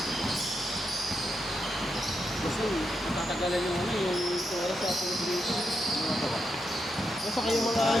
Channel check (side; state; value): both; normal; correlation 0.84